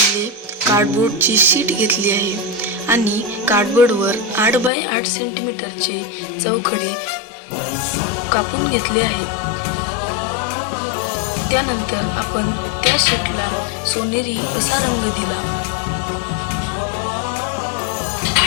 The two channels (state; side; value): drops out; right; at 4.7 s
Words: कार्डबोर्डची शीट घेतली आहे आणि कार्डबोर्डवर 8 बाय 8 सेंटीमीटरचे चौखडे कापून घेतले आहे. त्यानंतर आपण त्या शीटला सोनेरी असा रंग दिला.